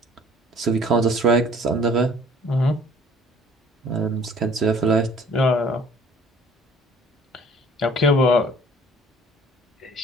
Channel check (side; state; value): both; normal; correlation 0.53